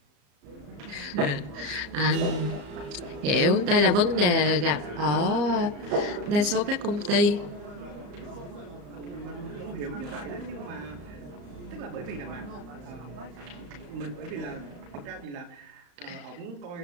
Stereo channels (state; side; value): late; left; 34 ms